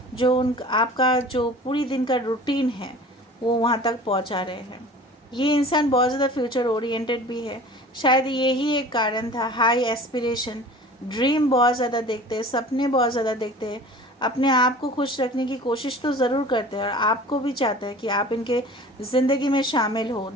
जो आपका जो पूरी दिन का रूटीन है वो वहाँ तक पहुँचा रहे हैं। ये इंसान बहुत ज़्यादा फ्यूचर ओरिएंटेड भी है, शायद यही एक कारण था, हाई एस्पिरेशन, ड्रीम बहुत ज़्यादा देखते हैं, सपने बहुत ज़्यादा देखते हैं, अपने आप को खुश रखने की कोशिश तो ज़रूर करते हैं, और आपको भी चाहते हैं कि आप इनके ज़िंदगी में शामिल हो,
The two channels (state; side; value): normal; both; correlation 0.42